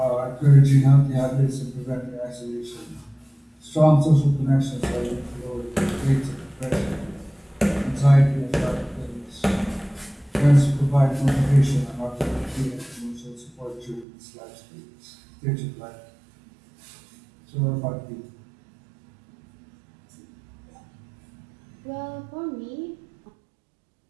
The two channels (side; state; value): left; drops out; at 14.1 s